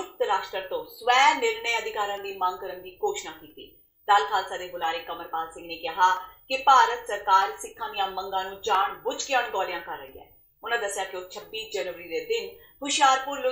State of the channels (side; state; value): both; identical; correlation 1.00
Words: ਰਾਸ਼ਟਰ ਤੋਂ ਸਵੈ ਨਿਰਣੇ ਅਧਿਕਾਰਾਂ ਦੀ ਮੰਗ ਕਰਨ ਦੀ ਘੋਸ਼ਣਾ ਕੀਤੀ। ਦਲ ਖਾਲਸਾ ਦੇ ਬੁਲਾਰੇ ਕਮਲਪਾਲ ਸਿੰਘ ਨੇ ਕਿਹਾ ਕਿ ਭਾਰਤ ਸਰਕਾਰ ਸਿੱਖਾਂ ਦੀਆਂ ਮੰਗਾਂ ਨੂੰ ਜਾਣ ਬੁੱਝ ਕੇ ਅਣਗੌਲਿਆਂ ਕਰ ਰਹੀ ਹੈ। ਉਹਨਾਂ ਦੱਸਿਆ ਕਿ ਉਹ 26 ਜਨਵਰੀ ਦੇ ਦਿਨ ਹੁਸ਼ਿਆਰਪੁਰ,